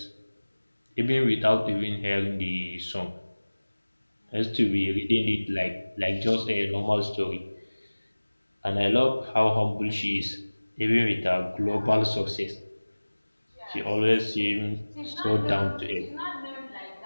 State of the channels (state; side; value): inverted; both; correlation -1.00